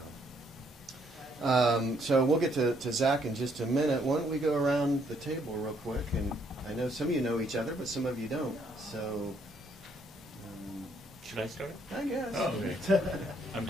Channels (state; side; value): normal; both; correlation 0.69